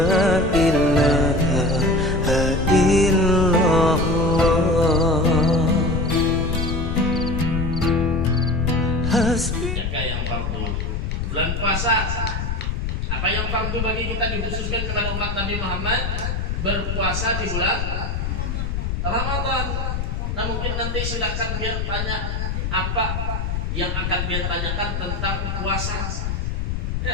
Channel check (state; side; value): noise; left; rumble, 2 dB below the sound